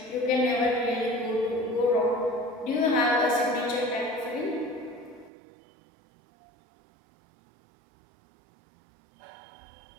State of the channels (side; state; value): left; drops out; at 5.3 s